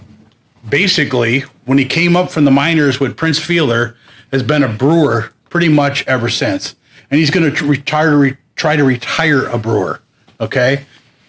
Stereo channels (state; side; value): identical; both; correlation 1.00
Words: basically, when he came up from the minors with Prince Fielder, has been a brewer pretty much ever since. And he's going to try to retire a brewer, okay?